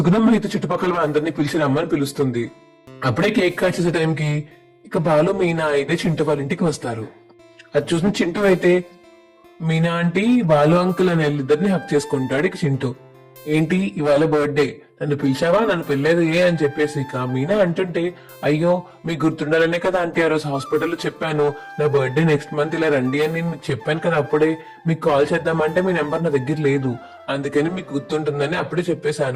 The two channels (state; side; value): identical; both; correlation 1.00